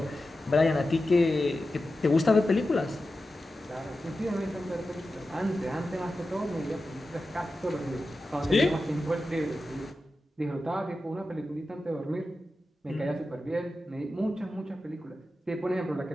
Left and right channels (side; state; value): both; normal; correlation 0.92